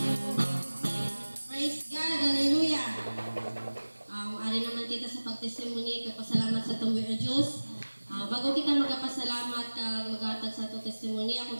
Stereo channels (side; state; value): both; inverted; correlation -1.00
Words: Praise God, hallelujah. Ari naman kita sa pagtestimony, kapasalamat sa tumboy o Diyos. Bago kita magpasalamat kag magatag sa itong testimony,